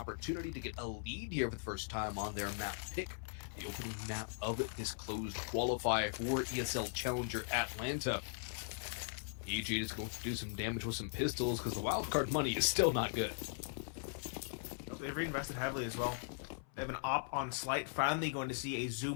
to get a lead here for the first time on their map pick. The opening map of this closed qualifier for ESL Challenger Atlanta. EG is going to do some damage with some pistols because the Wildcard money is still not good. They've reinvested heavily as well. They have an op on Slight, finally going to see a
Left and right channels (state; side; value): silent; right; 51 dB below the other